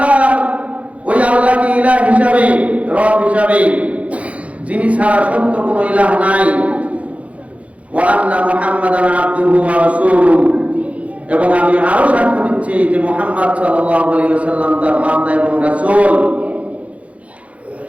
আল্লাহকে ইলাহ হিসাবে, রব হিসাবে, যিনি ছাড়া সত্য কোনো ইলাহ নাই, ওয়া আন্না মুহাম্মাদান আবদুহু ওয়া রাসূলুহু, এবং আমি আরো সাক্ষ্য দিচ্ছি যে মুহাম্মদ সাল্লাল্লাহু আলাইহি ওয়াসাল্লাম তার বান্দা এবং রাসূল।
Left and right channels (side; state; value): left; late; 0.065 ms